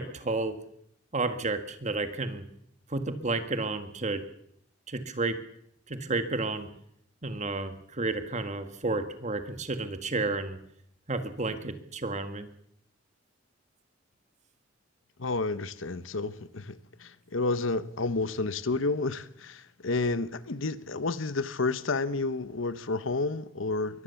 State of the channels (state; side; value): normal; both; correlation 0.10